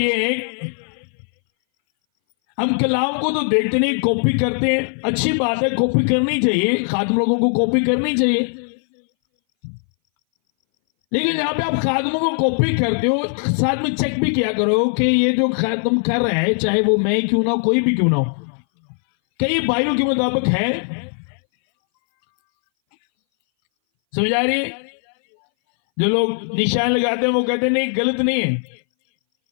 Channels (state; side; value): silent; right; 61 dB below the other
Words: है हम कलाम को तो देखते नहीं, कॉपी करते हैं। अच्छी बात है, कॉपी करनी चाहिए, खादिम लोगों को कॉपी करनी चाहिए। लेकिन जहां पे आप खादिमों को कॉपी करते हो साथ में चेक भी किया करो कि ये जो खादिम कर रहे हैं, चाहे वो मैं ही क्यों ना हो, कोई भी क्यों ना हो, कई बाइबल के मुताबिक है। समझ आ रही है? जो लोग निशान लगाते हैं वो कहते हैं नहीं गलत नहीं है,